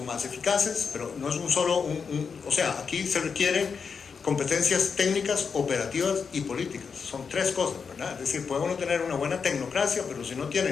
más eficaces, pero no es un solo, o sea, aquí se requieren competencias técnicas, operativas y políticas, son 3 cosas, ¿verdad? Es decir, puede uno tener una buena tecnocracia, pero si no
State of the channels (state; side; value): quieter; right; 5.8 dB